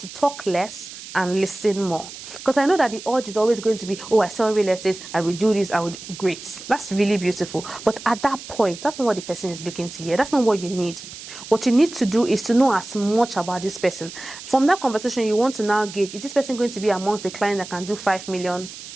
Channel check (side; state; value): right; noise; hiss, 13 dB below the sound